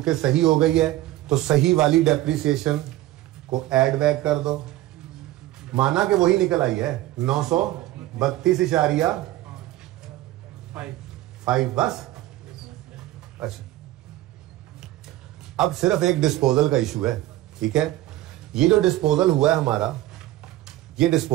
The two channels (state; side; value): quieter; left; 15.8 dB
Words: सही हो गई है तो सही वाली डेप्रिसिएशन को ऐड बैक कर दो। माना कि वही निकल आई है 932.5 बस। अच्छा, अब सिर्फ एक डिस्पोजल का इशू है, ठीक है। ये जो डिस्पोजल हुआ है हमारा, ये